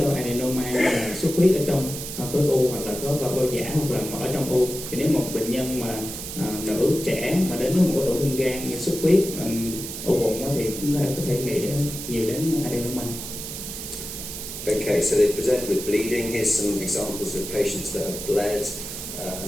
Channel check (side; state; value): right; noise; hiss, 8 dB below the sound